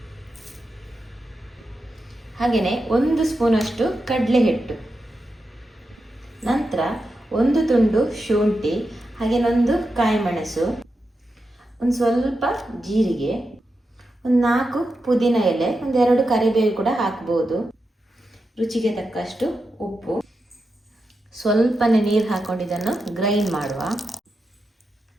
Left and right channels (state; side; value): normal; both; correlation 0.88